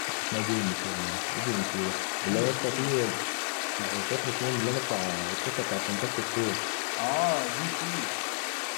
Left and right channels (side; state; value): right; silent; digital silence